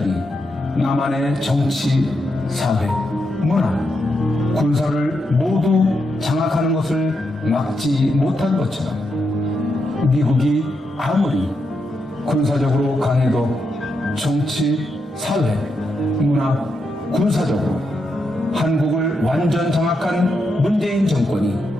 남한의 정치, 사회, 문화, 군사를 모두 장악하는 것을 막지 못한 것처럼 미국이 아무리 군사적으로 강해도 정치, 사회, 문화, 군사적으로 한국을 완전 장악한 문재인 정권이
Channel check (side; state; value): both; normal; correlation 0.83